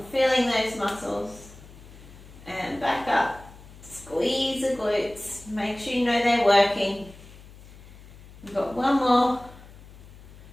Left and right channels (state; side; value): noise; left; hum, 20 dB below the sound